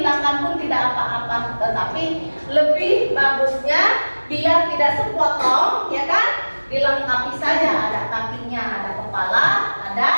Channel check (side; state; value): both; inverted; correlation -1.00